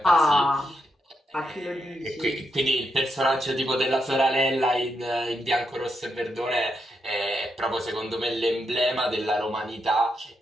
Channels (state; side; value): normal; both; correlation 0.83